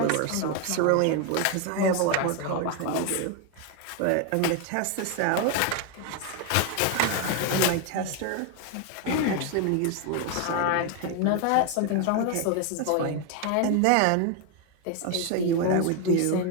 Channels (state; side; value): different; both; correlation 0.01